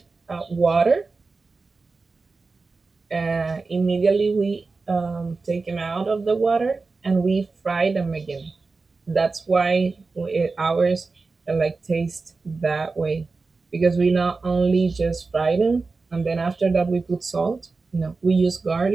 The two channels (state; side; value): quieter; left; 4.0 dB